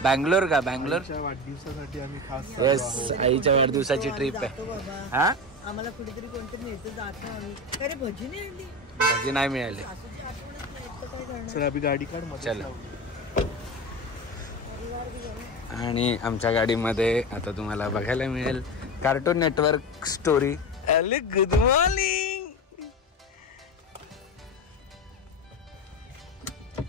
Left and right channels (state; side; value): normal; both; correlation 0.24